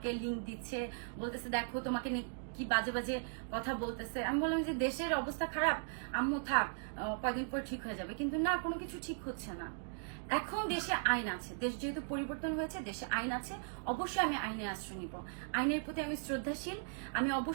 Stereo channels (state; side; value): silent; left; digital silence